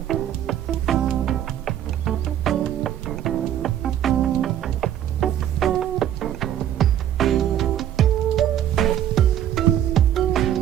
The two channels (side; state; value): left; quieter; 11.0 dB